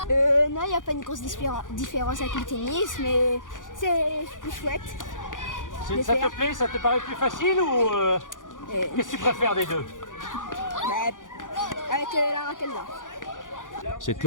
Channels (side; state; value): right; late; 0.88 ms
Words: Non, il n'y a pas une grosse différence avec le tennis, mais c'est plus chouette. Ça te plaît? Ça te paraît plus facile ou qu'est-ce que tu préfères des deux? Avec la raquette là. Cette